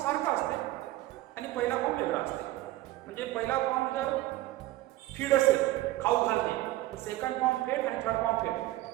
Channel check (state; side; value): quieter; left; 16.7 dB